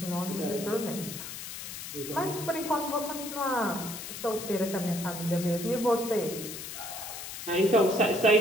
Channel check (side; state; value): left; noise; hiss, 9 dB below the sound